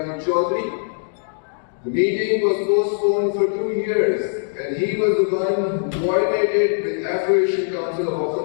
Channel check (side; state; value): right; silent; digital silence